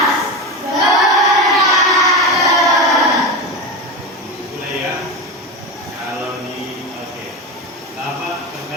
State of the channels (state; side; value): normal; both; correlation 0.20